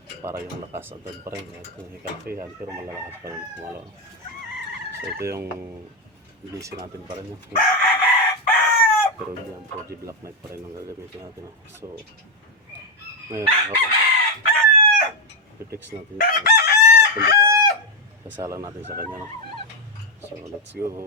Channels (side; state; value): both; normal; correlation 0.04